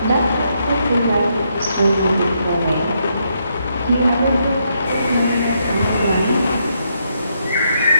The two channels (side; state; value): both; inverted; correlation -0.77